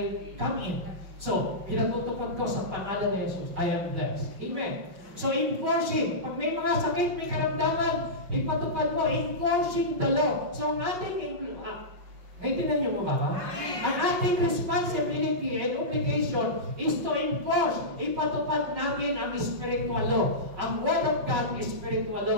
come in. So, pinatutupad ko sa pangalan ni Jesus, I am blessed. Amen? So, enforcing, pag may mga sakit, may karamdaman, ipatupad mo, enforcing the law. So, ang ating naintindihan niyo mo ba? Ang ating responsibility and obligation is to enforce, ipatupad natin ang spiritual law. Ang Word of God is spiritual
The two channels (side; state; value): left; late; 5.6 ms